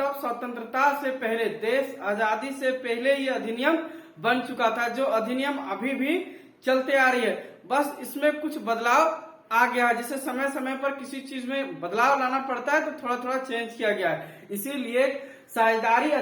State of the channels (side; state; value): both; identical; correlation 1.00